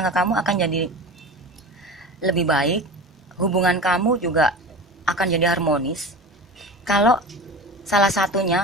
akan jadi lebih baik, hubungan kamu juga akan jadi harmonis kalau salah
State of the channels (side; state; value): both; normal; correlation 0.31